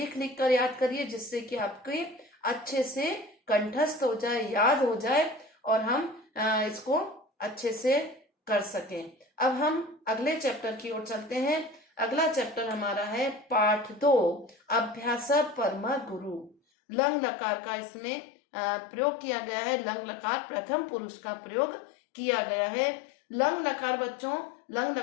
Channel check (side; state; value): right; drops out; at 16.6 s